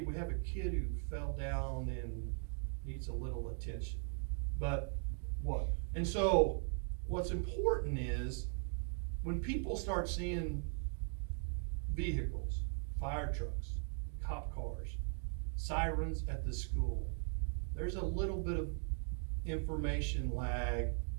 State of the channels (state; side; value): silent; left; 52 dB below the other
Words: we have a kid who fell down and needs a little attention. But what? And so what's important is when people start seeing vehicles, fire trucks, cop cars, sirens at the school, there's a little bit of information lag